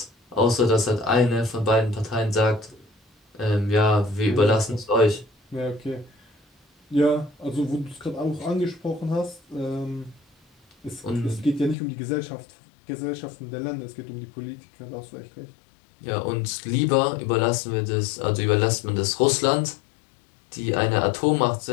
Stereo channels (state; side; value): drops out; right; at 11.8 s